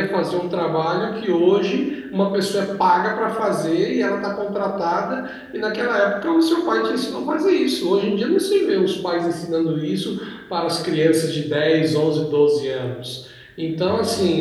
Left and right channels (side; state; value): both; identical; correlation 1.00